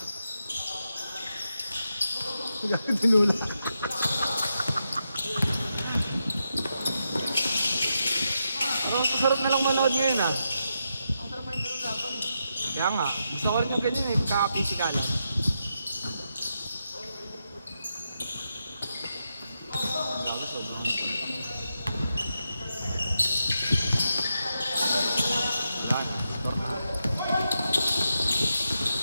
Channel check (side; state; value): both; inverted; correlation -0.85